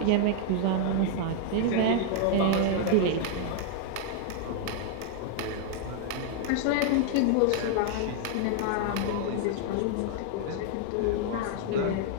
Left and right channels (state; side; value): different; both; correlation 0.00